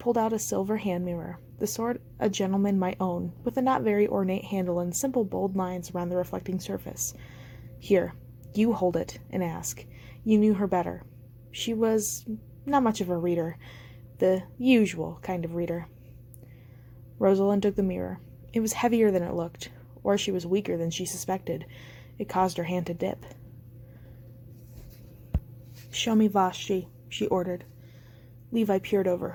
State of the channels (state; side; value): identical; both; correlation 1.00